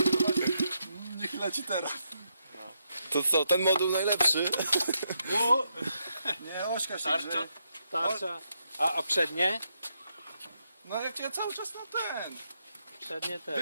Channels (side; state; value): both; inverted; correlation -0.80